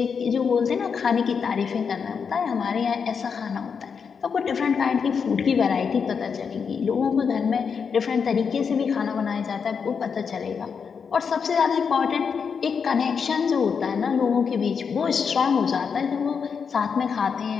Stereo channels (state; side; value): quieter; right; 6.2 dB